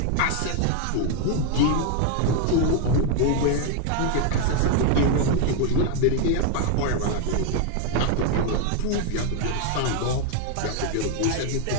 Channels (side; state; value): both; different; correlation 0.01